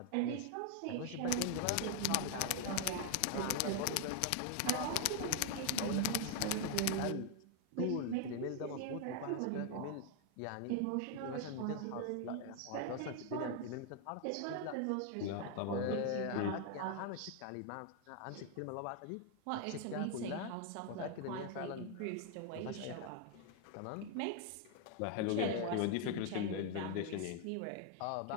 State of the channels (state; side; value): different; both; correlation 0.00